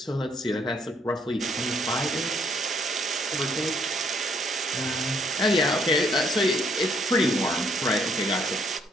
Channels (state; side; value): normal; both; correlation 0.68